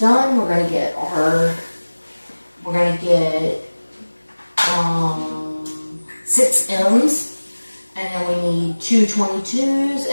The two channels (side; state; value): both; inverted; correlation -1.00